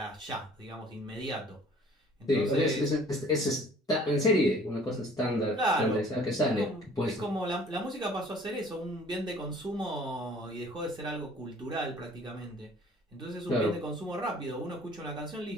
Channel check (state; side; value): normal; both; correlation 0.53